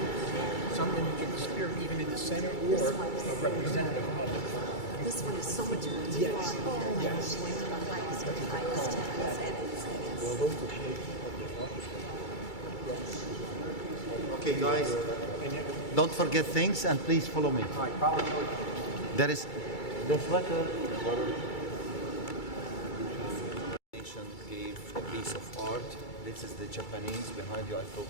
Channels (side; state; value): right; late; 2.3 ms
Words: some indicate the spirit even in the center or a representative of it. This one is so much more to Yes. yes. The highest heavens and Okay, guys, don't forget things and please follow me. There is the sweater. Nation gave a piece of art. This is the Japanese behind you I